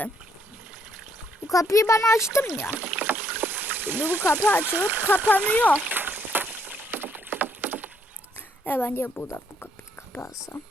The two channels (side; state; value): both; normal; correlation 0.71